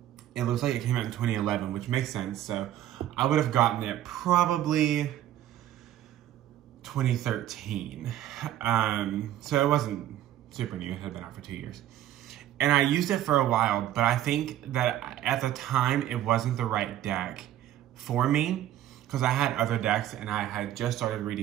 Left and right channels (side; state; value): left; quieter; 12.5 dB